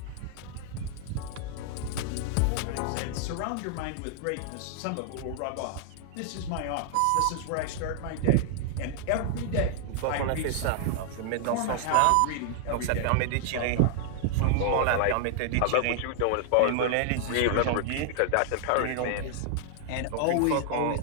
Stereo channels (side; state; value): both; different; correlation 0.00